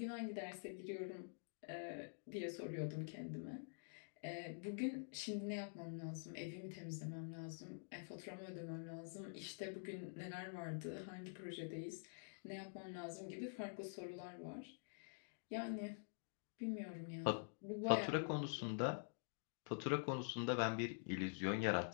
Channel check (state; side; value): silent; right; digital silence